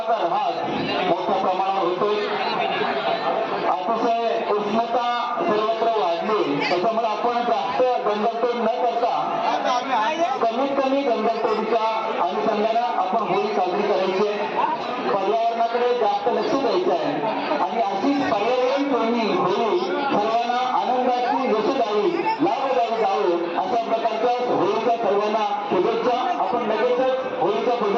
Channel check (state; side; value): identical; both; correlation 1.00